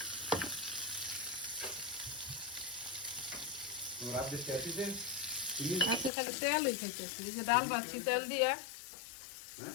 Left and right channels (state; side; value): drops out; right; at 6.1 s